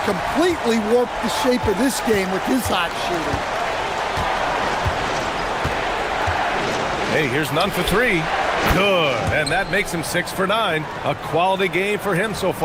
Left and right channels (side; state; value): both; identical; correlation 1.00